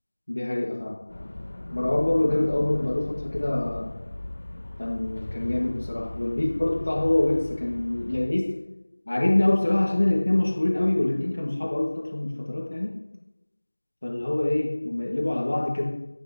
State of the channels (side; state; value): both; inverted; correlation -1.00